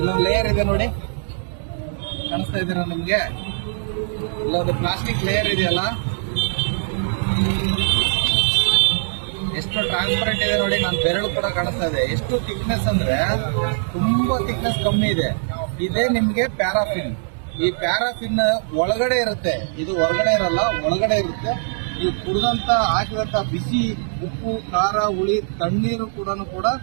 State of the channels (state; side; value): silent; left; digital silence